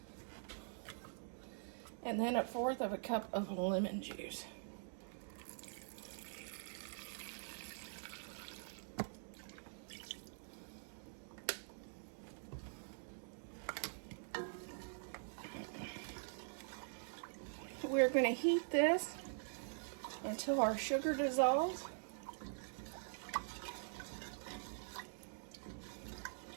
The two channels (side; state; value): left; silent; digital silence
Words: And then 1/4 of a cup of lemon juice. We're going to heat this until our sugar dissolves.